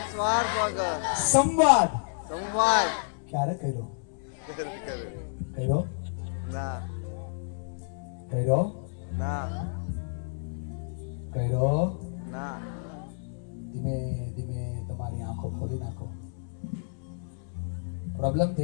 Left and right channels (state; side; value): silent; right; digital silence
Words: સ્વાર્થ વગર સંવાદ સંવાદ ક્યારે કર્યો? ના કર્યો ના ના ધીમે ધીમે તમારી આંખો ખોલી નાખો. પ્રોબ્લેમ